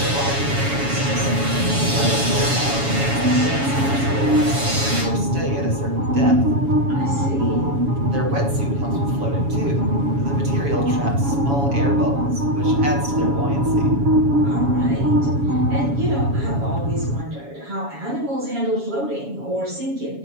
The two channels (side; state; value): left; late; 7.2 ms